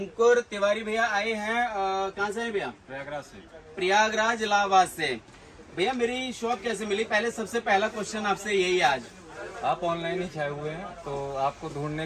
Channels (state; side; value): identical; both; correlation 1.00